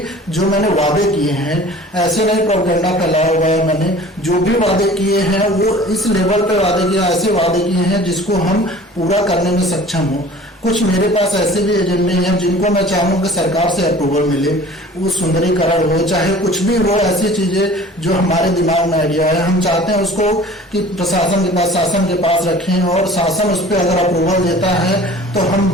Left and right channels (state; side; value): normal; both; correlation 0.46